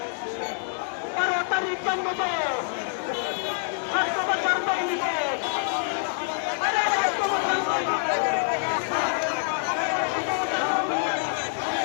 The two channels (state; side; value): silent; right; digital silence